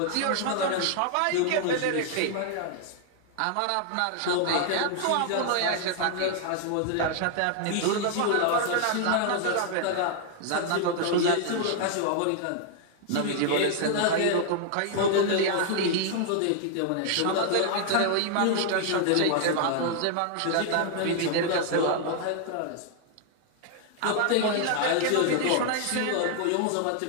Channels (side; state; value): both; different; correlation 0.00